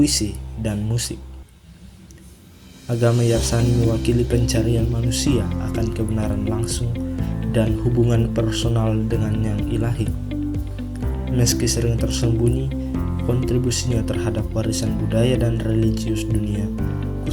dan musik. Agama Yarsani mewakili pencarian manusia akan kebenaran langsung dan hubungan personal dengan yang ilahi. Meski sering tersembunyi, kontribusinya terhadap warisan budaya dan religius dunia,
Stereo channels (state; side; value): identical; both; correlation 1.00